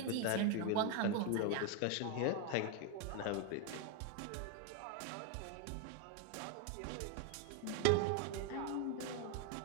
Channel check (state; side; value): different; both; correlation 0.01